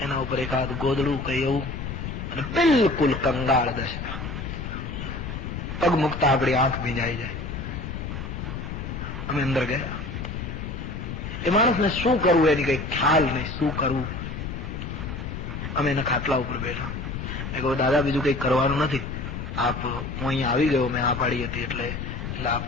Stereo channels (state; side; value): noise; left; rumble, 6 dB below the sound